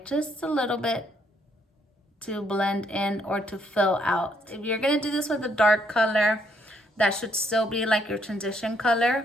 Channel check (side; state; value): both; normal; correlation 0.70